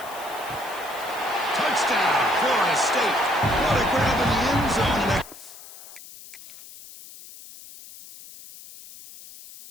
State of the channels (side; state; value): left; noise; hiss, 17 dB below the sound